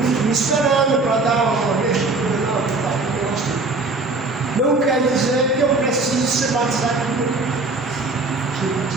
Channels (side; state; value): left; quieter; 3.4 dB